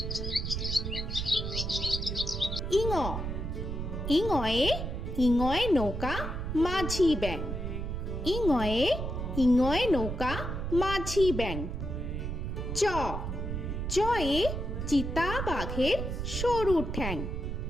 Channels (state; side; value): noise; right; rumble, 4 dB below the sound